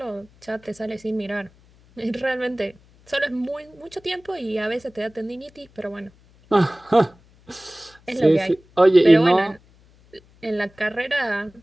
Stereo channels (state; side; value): noise; left; hum, 29 dB below the sound